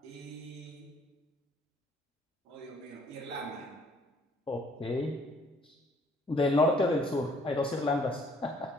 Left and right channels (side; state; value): both; normal; correlation 0.61